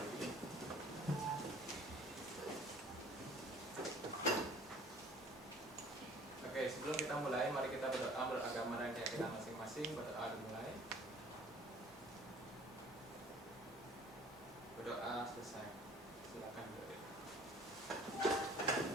Oke, sebelum kita mulai, mari kita berdoa beragama dan keyakinan masing-masing. Berdoa dimulai. Berdoa selesai. Silakan adik.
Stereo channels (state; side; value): normal; both; correlation 0.50